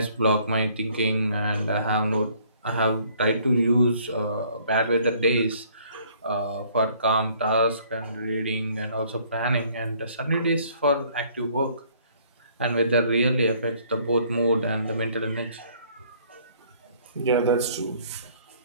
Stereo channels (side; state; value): both; inverted; correlation -0.60